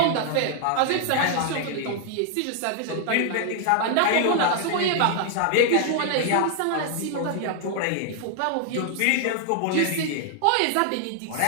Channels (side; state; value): both; different; correlation 0.00